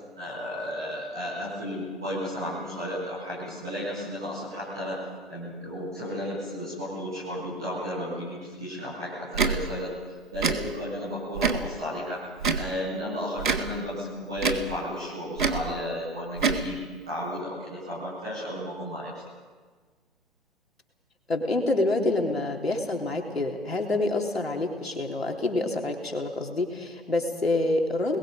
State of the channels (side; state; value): both; normal; correlation 0.46